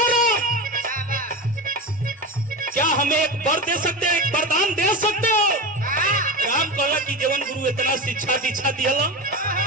क्या हमें एक वर दे सकते हो एक वरदान दे सकते हो। राम कहला कि जीवन गुरु इतना शिक्षा दीक्षा दिया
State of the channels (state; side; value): normal; both; correlation 0.23